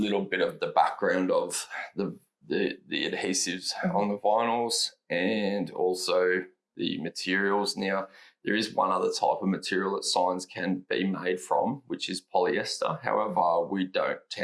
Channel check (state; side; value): identical; both; correlation 1.00